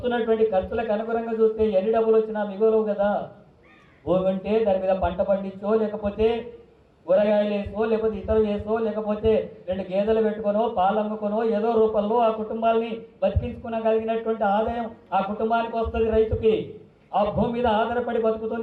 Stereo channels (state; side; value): identical; both; correlation 1.00